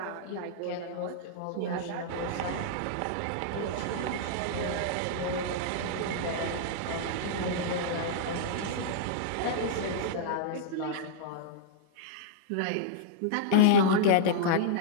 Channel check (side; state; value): both; different; correlation -0.01